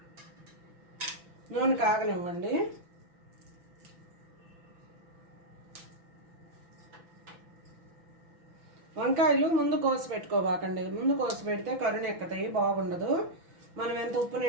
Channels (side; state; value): left; late; 6.0 ms